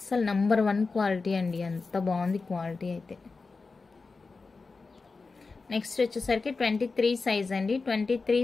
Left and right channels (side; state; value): right; quieter; 4.1 dB